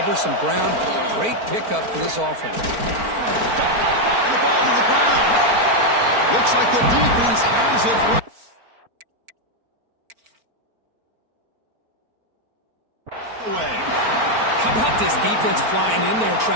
some ground? Great pickup for this offense. And the ball to the ground. Looks like the defense has it. How about this defense flying in there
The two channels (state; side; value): late; left; 4.4 ms